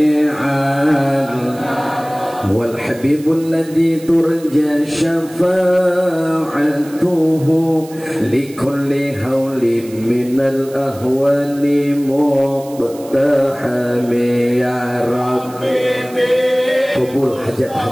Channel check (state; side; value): noise; right; hiss, 21 dB below the sound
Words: wal habibul ladzi turja syafa'atuhu likulli hawlin minal ahwali muqtahami ya Rabbi. Kabul